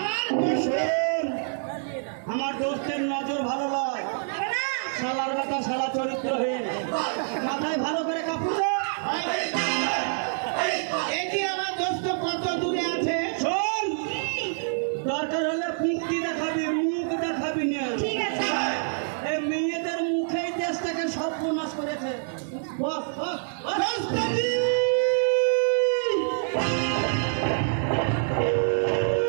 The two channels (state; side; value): silent; left; digital silence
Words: আমার দোস্তের নজর ভালো নয়, শালার কথা শালা চরিত্রহীন, মাথায় ভালো করে কাপড়। আমার দোস্ত কত দূরে আছে শোন, দরকার হলে মুক্তি দেখাবি, মুখ দেখাবি না। ঠিক আছে, এই মেয়েদের মুখেই দেশটাকে সর্বনাশ করেছে। বস বস